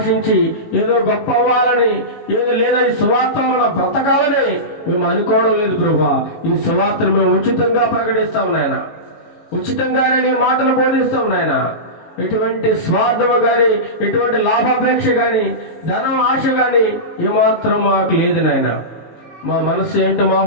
ఏదో గొప్ప అవ్వాలని, ఏదో లేదా ఈ సువార్త వలన బ్రతకాలని మేము అనుకోవడం లేదు ప్రభా. ఈ సువార్తను మేము ఉచితంగా ప్రకటిస్తాము నాయన. ఉచితంగానే నీ మాటలు బోధిస్తాం నాయన. ఎటువంటి స్వార్థము కానీ, ఎటువంటి లాభాపేక్ష కానీ, ధనం ఆశ కానీ ఏమాత్రం మాకు లేదు నాయన. మా మనస్సు ఏంటో, మా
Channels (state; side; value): late; right; 18 ms